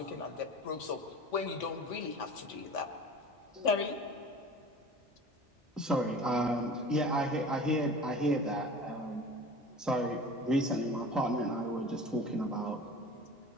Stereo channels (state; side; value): normal; both; correlation 0.40